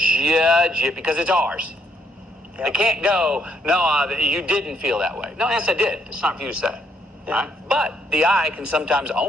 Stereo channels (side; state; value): both; normal; correlation 0.71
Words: it because it's ours. Yep. They can't go, no, you didn't feel that way. No, yes, I did. It's not for you to say. Yeah. Right? But the I can sometimes